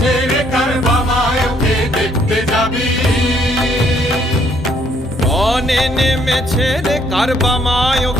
রে কারবামায়কে দেখতে যাবি। রনে নেমেছে রে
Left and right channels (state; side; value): normal; both; correlation 0.67